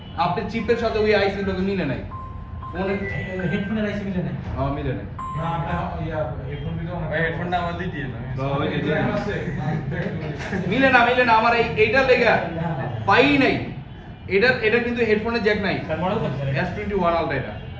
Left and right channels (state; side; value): identical; both; correlation 1.00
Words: আপনার চিপের সাথে ওই আইসি লোকে মিলে নাই। অনেক হেডফোনের আইসি মিলে নাই মিলে নাই। না আমরা ইয়া হেডফোন দিতে অনেক হেডফোনটা আমাদের দিয়ে না মিলে না আমার এইটা লেগা পাই নাই। এটা কিন্তু হেডফোনের জ্যাক নাই। স্যার মডেল কত স্যার? S21 আলট্রা এটা।